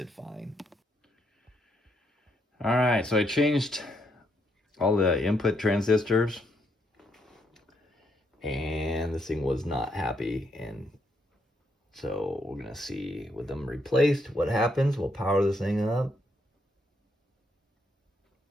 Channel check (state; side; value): normal; both; correlation 0.76